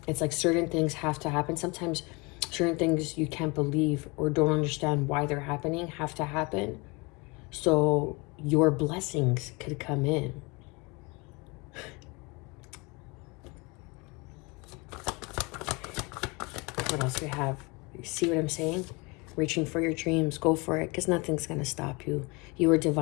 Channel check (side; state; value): right; quieter; 27.4 dB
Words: It's like certain things have to happen. Sometimes certain things you can't believe or don't understand why they're happening have to happen. So your blessings could come in. What else do we have? You see what I'm saying? Reaching for your dreams, go for it, because nothing's going to stop you. You are